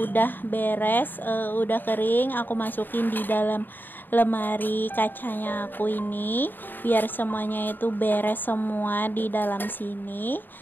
beres, udah kering, aku masukin di dalam lemari kacanya aku ini biar semuanya itu beres semua di dalam sini.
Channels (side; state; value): right; late; 0.092 ms